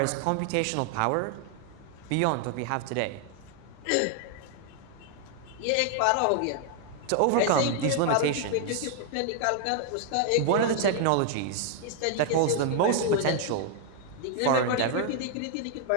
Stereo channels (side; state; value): both; different; correlation 0.00